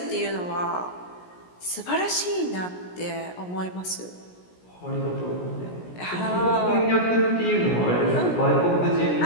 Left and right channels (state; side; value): late; right; 17 ms